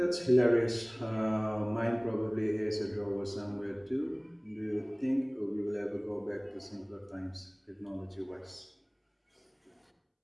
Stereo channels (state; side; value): identical; both; correlation 1.00